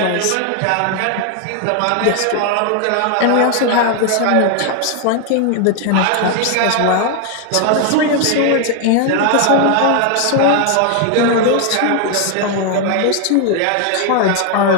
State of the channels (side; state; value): both; different; correlation 0.00